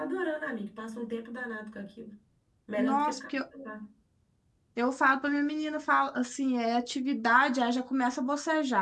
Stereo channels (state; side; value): identical; both; correlation 1.00